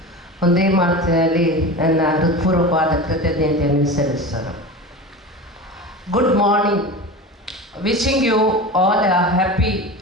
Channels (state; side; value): normal; both; correlation 0.30